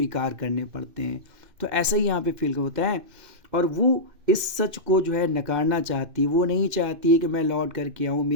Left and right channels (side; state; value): left; late; 2.6 ms